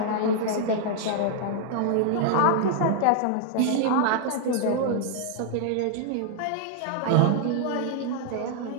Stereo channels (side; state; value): both; different; correlation 0.00